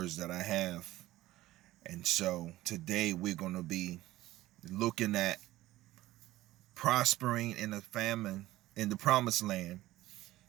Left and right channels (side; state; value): left; quieter; 16.3 dB